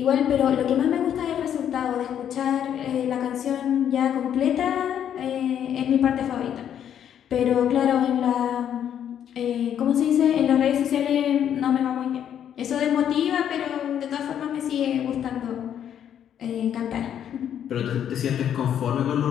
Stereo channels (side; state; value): right; quieter; 9.5 dB